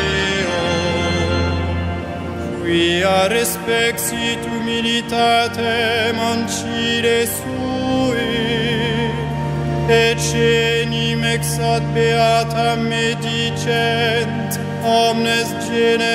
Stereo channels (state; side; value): identical; both; correlation 1.00